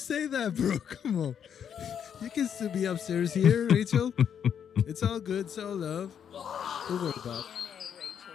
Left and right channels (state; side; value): quieter; right; 8.3 dB